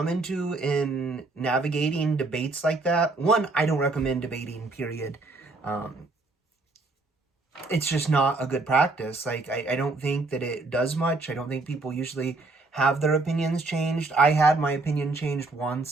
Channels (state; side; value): quieter; left; 3.4 dB